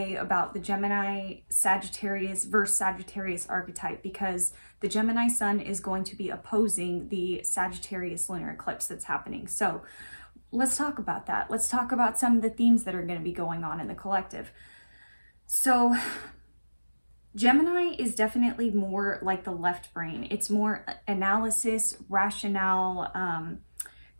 about the Gemini Sagittarius versus Sagittarius archetype, because the Gemini sun is going to be opposing the Sagittarius lunar eclipse that's happening. So let's talk about that. Let's talk about some of the themes that are going to be going on in the collective. So Gemini is definitely more like the left brain. It's more analysis, rationale,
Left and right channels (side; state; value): both; inverted; correlation -1.00